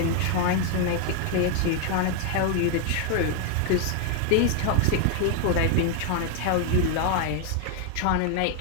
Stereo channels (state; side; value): different; both; correlation 0.01